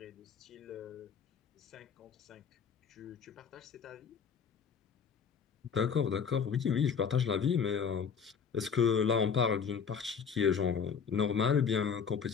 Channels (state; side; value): quieter; right; 6.6 dB